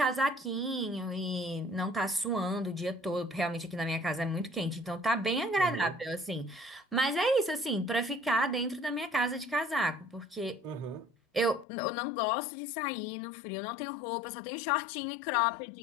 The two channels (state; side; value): drops out; right; at 11.7 s